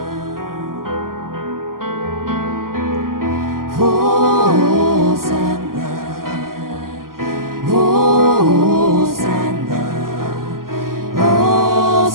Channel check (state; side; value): late; left; 0.92 ms